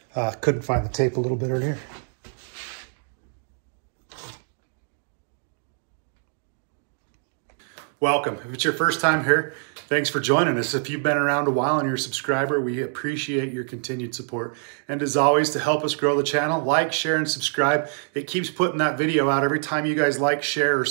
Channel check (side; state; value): left; silent; 59 dB below the other